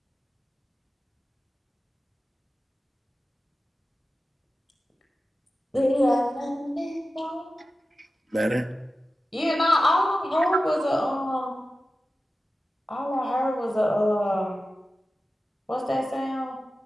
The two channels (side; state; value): both; normal; correlation 0.94